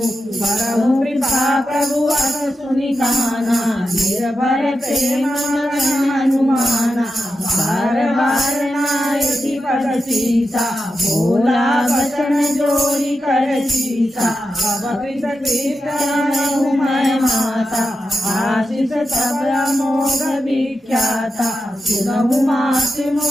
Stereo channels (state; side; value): normal; both; correlation 0.89